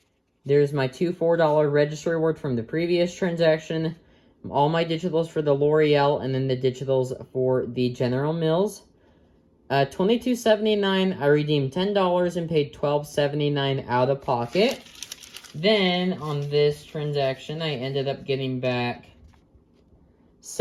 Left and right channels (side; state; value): both; identical; correlation 1.00